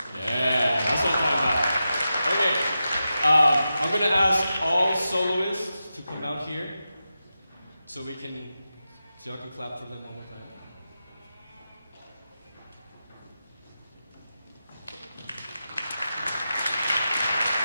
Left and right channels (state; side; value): inverted; both; correlation -0.91